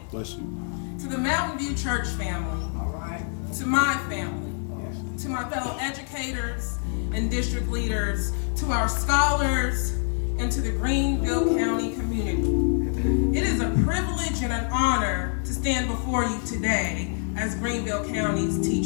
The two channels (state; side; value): silent; right; 58 dB below the other